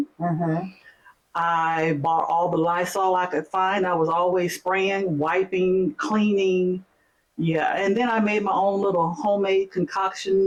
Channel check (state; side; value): identical; both; correlation 1.00